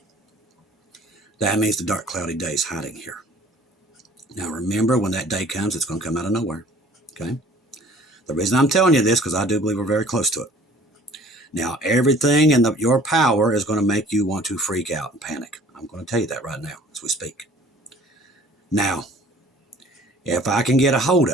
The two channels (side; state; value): both; normal; correlation 0.51